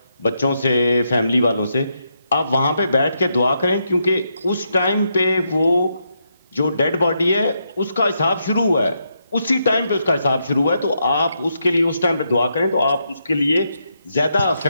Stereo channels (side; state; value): both; inverted; correlation -0.81